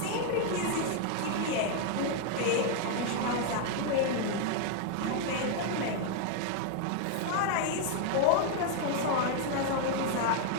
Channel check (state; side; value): different; both; correlation 0.00